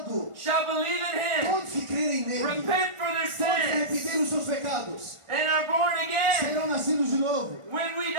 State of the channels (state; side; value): late; left; 1.5 ms